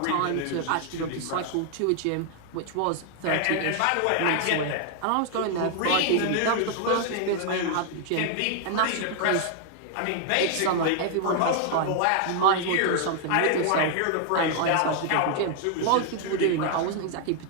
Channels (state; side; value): different; both; correlation 0.00